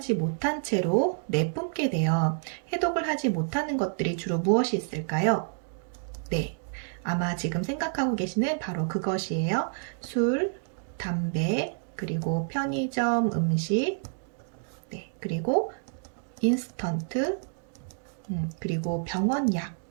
못한 채로 내뿜게 돼요. 해독을 하지 못하는 것들이 주로 무엇이 있을까요? 네, 아마 지금 생각하고 계시는 바로 그것이에요. 술, 담배, 그리고 편의점 음식, 네, 그리고 인스턴트, 그리고 병원 약.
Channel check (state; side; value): silent; left; digital silence